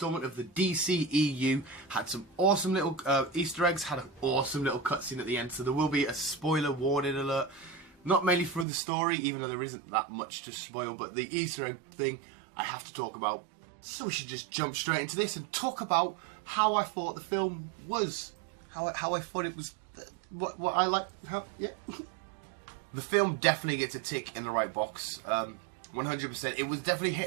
of the DCEU had some awesome little Easter eggs, had an awesome little cutscene at the end, so there will be a spoiler warning alert. Not mainly for the story, even though there isn't that much to spoil, but the Easter egg thing I have to talk about. So we should just jump straight into this and talk about how I thought the film was. How I thought it was, what I like, yeah. The film definitely gets a tick in the right box, 100%. It was definitely hit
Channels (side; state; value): left; drops out; at 8.7 s